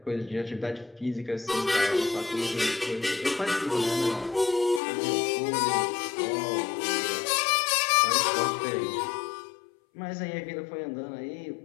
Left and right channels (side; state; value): right; drops out; at 4.8 s